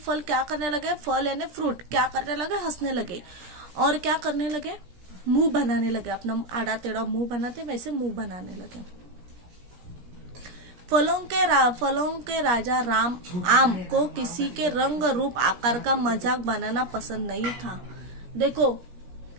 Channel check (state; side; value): late; left; 17 ms